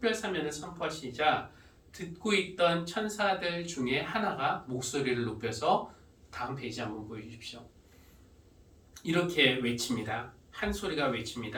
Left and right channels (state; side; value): identical; both; correlation 1.00